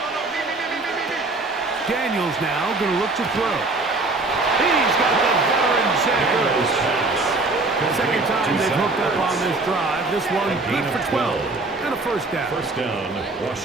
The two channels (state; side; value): quieter; left; 3.3 dB